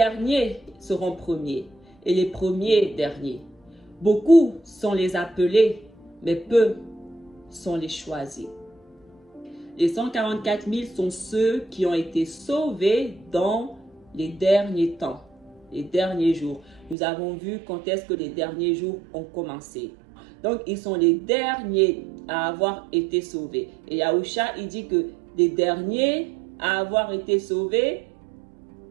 seront premiers et les premiers derniers. Beaucoup sont les appelés, mais peu sont les choisis. Les 144 000 sont ceux qui ont été sauvés dans les derniers temps, les derniers jours. Nous avons vu quand est-ce que les derniers jours ont commencé. Donc, ils sont les derniers à avoir été sauvés. Et Yahusha, il dit que les derniers à avoir été sauvés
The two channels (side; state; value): left; drops out; at 16.9 s